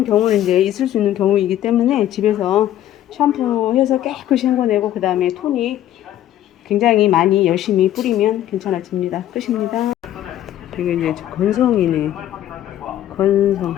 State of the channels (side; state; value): right; quieter; 12.3 dB